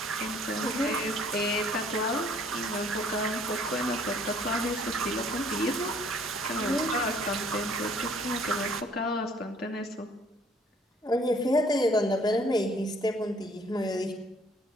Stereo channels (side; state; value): both; normal; correlation 0.59